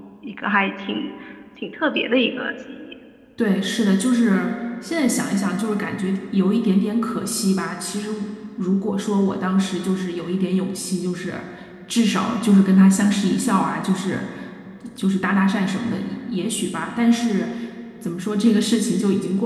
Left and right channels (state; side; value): identical; both; correlation 1.00